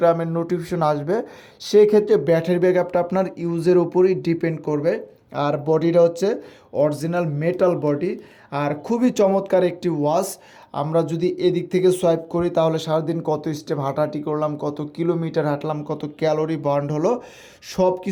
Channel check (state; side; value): identical; both; correlation 1.00